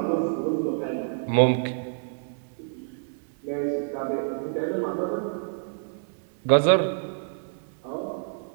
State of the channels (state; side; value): silent; left; digital silence